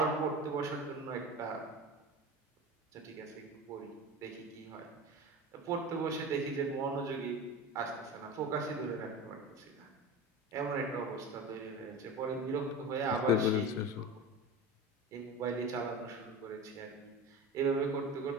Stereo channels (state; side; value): normal; both; correlation 0.30